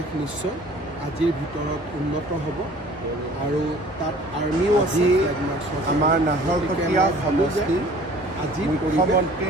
নিশ্চয় আজিৰ ভিতৰত উন্নত হ'ব আৰু তাত আৰ্মিও আছে। আমাৰ নাহৰকটীয়া সমষ্টি আজি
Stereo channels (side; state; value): both; normal; correlation 0.50